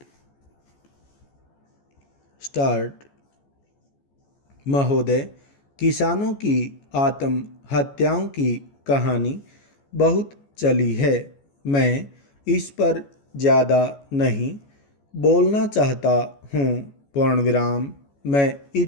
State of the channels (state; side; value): late; right; 14 ms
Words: स्टार्ट। महोदय, किसानों की आत्महत्याओं की कहानी बहुत चली है। मैं इस पर ज़्यादा नहीं बोलना चाहता हूँ। पूर्ण विराम। मैं